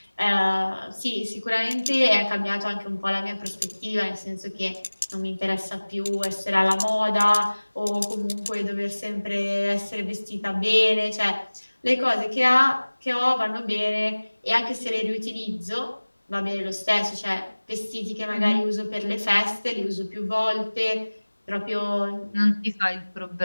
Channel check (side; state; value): both; inverted; correlation -1.00